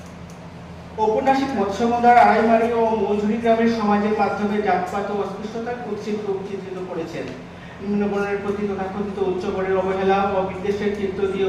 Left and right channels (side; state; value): both; identical; correlation 1.00